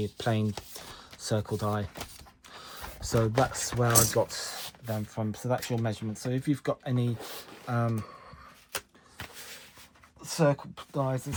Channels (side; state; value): both; identical; correlation 1.00